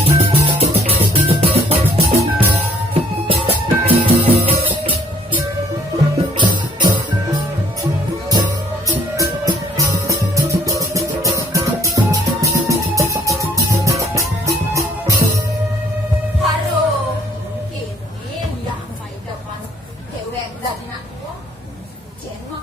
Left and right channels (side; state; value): both; normal; correlation 0.60